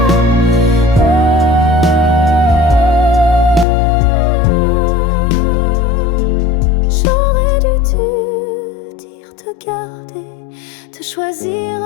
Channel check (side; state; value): right; drops out; at 3.7 s